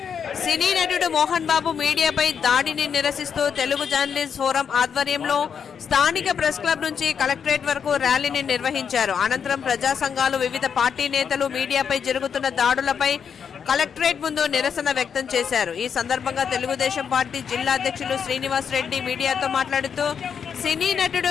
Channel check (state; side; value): quieter; right; 7.1 dB